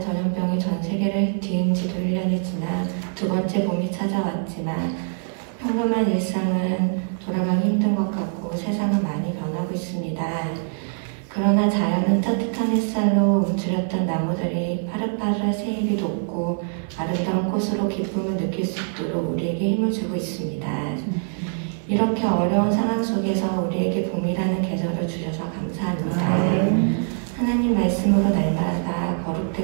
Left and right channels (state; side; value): silent; left; digital silence